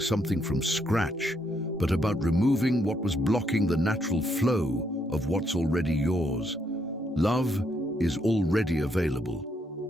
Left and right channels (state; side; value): normal; both; correlation 0.74